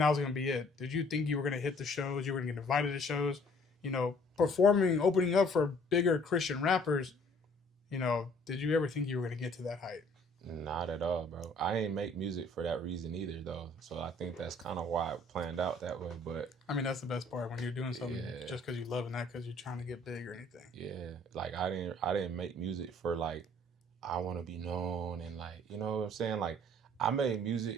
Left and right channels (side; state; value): both; normal; correlation 0.57